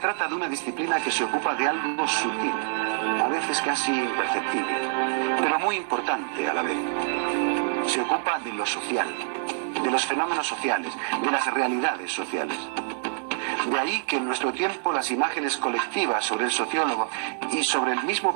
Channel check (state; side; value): silent; left; 61 dB below the other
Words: de una disciplina que se ocupa de algo sutil, a veces casi imperceptible, pero muy importante a la vez. Se ocupa de lo social, de los fenómenos sociales, de las realidades sociales. De ahí que en nuestro tiempo las imágenes colectivas sobre el sociólogo y sobre el mismo